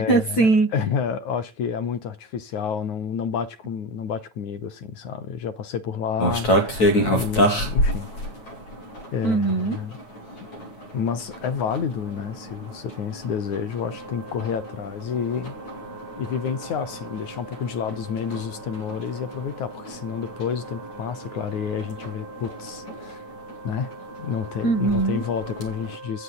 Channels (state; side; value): late; right; 9.2 ms